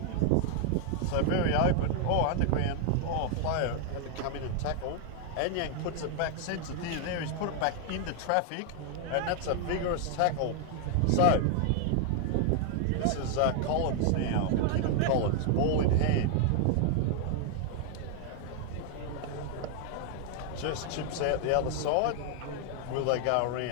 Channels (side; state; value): both; different; correlation 0.00